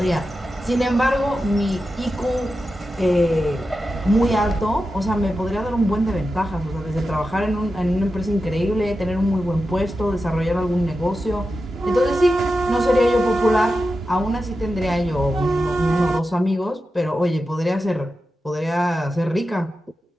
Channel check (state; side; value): normal; both; correlation 0.91